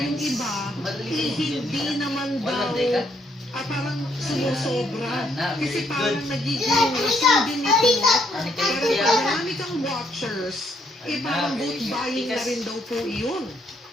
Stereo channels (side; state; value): both; normal; correlation 0.71